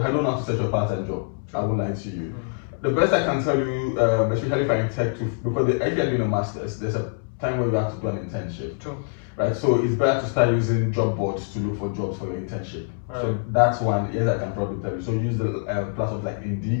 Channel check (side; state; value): right; silent; 62 dB below the other